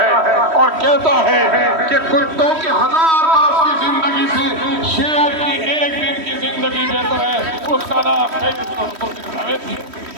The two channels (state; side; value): late; left; 3.1 ms